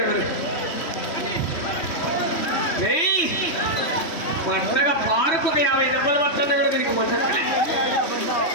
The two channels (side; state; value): right; late; 3.1 ms